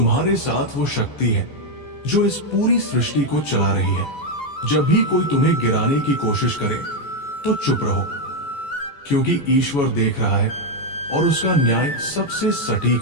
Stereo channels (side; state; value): right; late; 14 ms